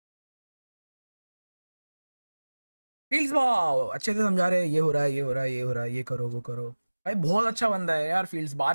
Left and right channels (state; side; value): inverted; both; correlation -1.00